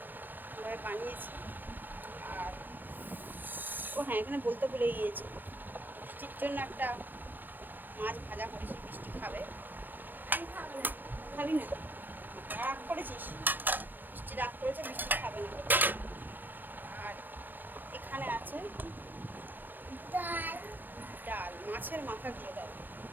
বানিয়েছি। আর হ্যাঁ, এখানে বলতে ভুলে গিয়েছি, বৃষ্টির জন্য একটা মাছ ভাজা করেছি। বৃষ্টি খাবে, খাবি না? রাগ করেছিস? বৃষ্টি রাগ করেছে, বৃষ্টি খাবে না। আর এখানে আছে ডাল, মাছের মাথা দিয়ে ডাল।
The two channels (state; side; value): late; left; 0.089 ms